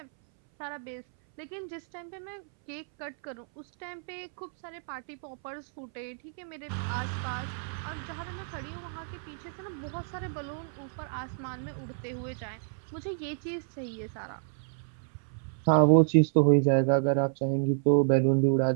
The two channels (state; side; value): silent; left; 58 dB below the other